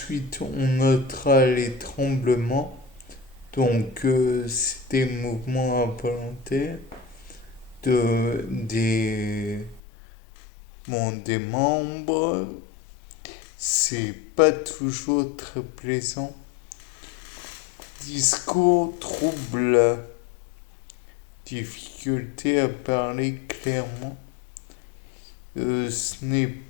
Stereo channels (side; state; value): right; drops out; at 9.8 s